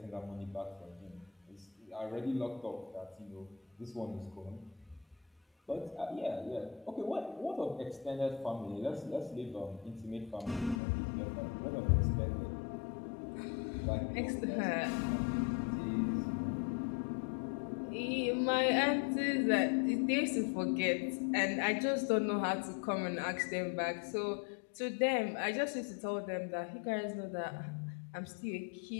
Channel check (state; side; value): drops out; right; at 10.8 s